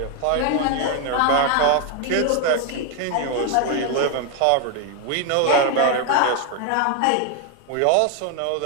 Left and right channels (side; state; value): both; different; correlation 0.01